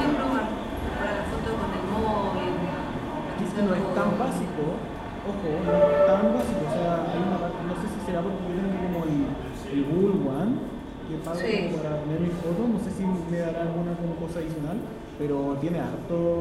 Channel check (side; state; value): both; identical; correlation 1.00